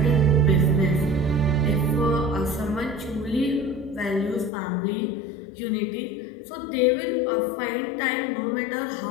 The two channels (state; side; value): drops out; right; at 4.5 s